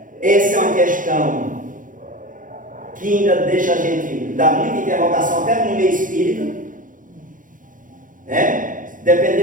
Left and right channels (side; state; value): left; late; 0.39 ms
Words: Essa é uma questão que ainda deixa a gente dar muita interrogação até no meio espírita,